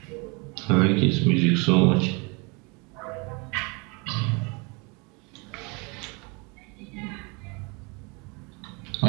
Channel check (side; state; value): left; quieter; 29.7 dB